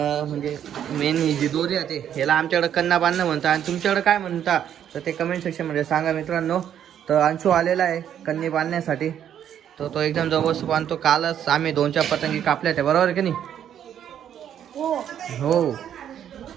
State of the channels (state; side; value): quieter; left; 9.7 dB